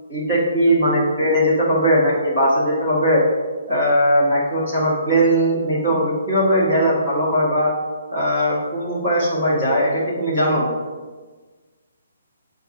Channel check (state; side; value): inverted; both; correlation -0.59